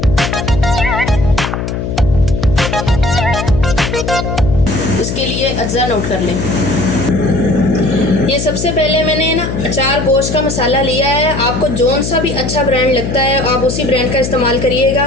इसके लिए अज्जा नोट कर लें। ये सबसे पहले मैंने ना अचार गोश्त का मसाला लिया है। आपको जौन सा भी अच्छा ब्रांड लगता है आप उसी ब्रांड का इस्तेमाल करिएगा।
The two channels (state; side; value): noise; left; hum, 4 dB below the sound